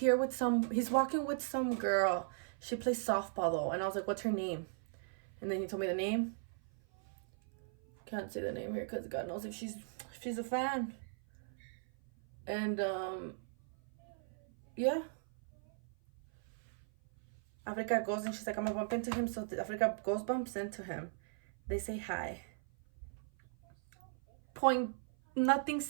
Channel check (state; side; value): silent; left; 52 dB below the other